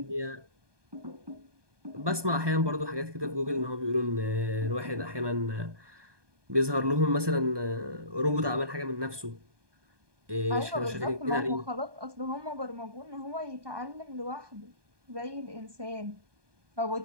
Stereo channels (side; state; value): left; late; 1.2 ms